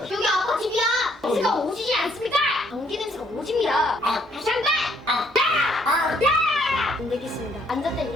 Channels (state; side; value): normal; both; correlation 0.67